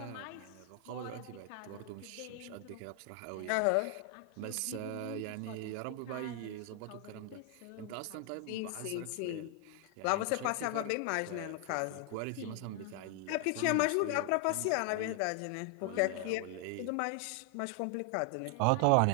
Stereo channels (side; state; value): both; different; correlation 0.00